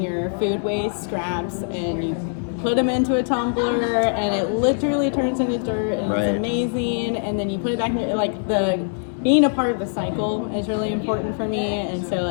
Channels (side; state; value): right; silent; digital silence